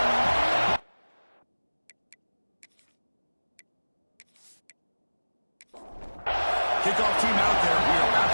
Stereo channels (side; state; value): both; inverted; correlation -1.00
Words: Kickoff team out there. We are about